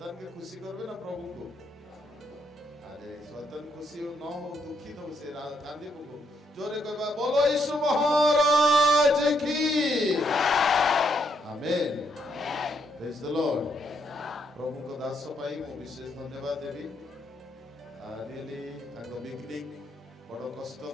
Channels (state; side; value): normal; both; correlation 0.75